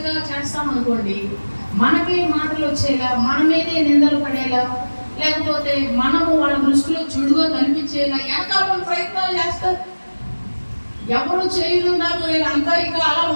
చేస్తాం అనుకోండి, మనకే మాటలు వచ్చేలా, మన మీదే నిందలు పడేలా, లేకపోతే మనము వాళ్ళ దృష్టిలో చెడుగా కనిపించేలా వెనకాల ప్రయత్నాలు చేస్తారు. ఎవరు చేయరు, నాకు అంతా ఇక అలా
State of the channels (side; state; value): both; inverted; correlation -1.00